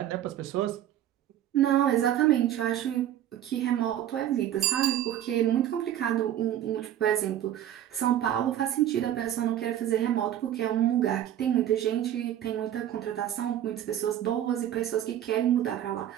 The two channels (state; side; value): quieter; left; 11.5 dB